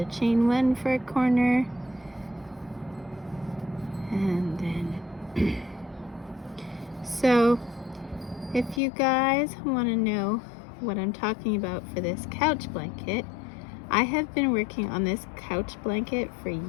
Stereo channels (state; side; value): drops out; right; at 8.8 s